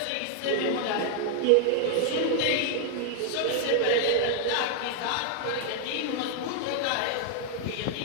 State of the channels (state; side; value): different; both; correlation 0.00